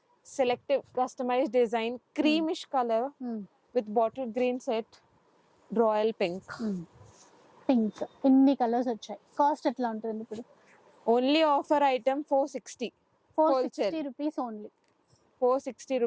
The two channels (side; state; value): both; identical; correlation 1.00